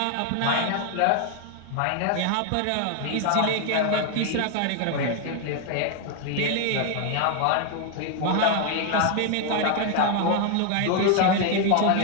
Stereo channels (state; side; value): different; both; correlation 0.00